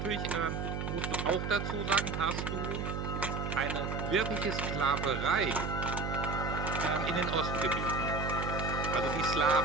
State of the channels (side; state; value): right; noise; hum, 3 dB below the sound